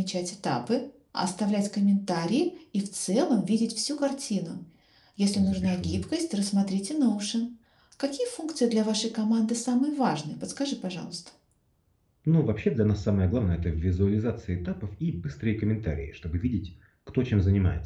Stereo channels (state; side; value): identical; both; correlation 1.00